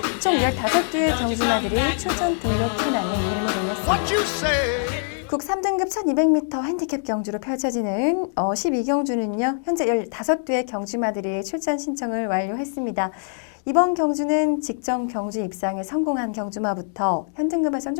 총 15개의 경주마들이 출전 등록 현황에 이름을 올렸습니다. 국 3등급 1200m 핸디캡 경주로 펼쳐지는 12경주는요. 현재 15개의 경주마들이 출전 신청을 완료했습니다. 이번 경주는 직전 경주 입상에 성공한 경주마부터 현등급에선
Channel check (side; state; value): right; silent; digital silence